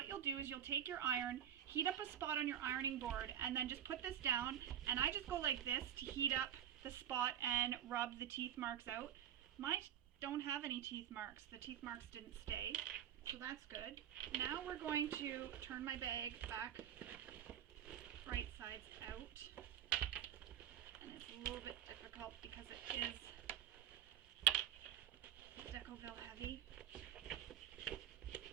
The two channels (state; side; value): quieter; left; 10.1 dB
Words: you'll do is you'll take your iron, heat up a spot on your ironing board, and then just put this down. And I just go like this to heat up the spot and rub the teeth marks out. Mine don't have any teeth marks. The teeth marks didn't stay. So that's good. Now we're going to turn my bag back right sides out. And it's a little bit difficult because it is Decavol Heavy.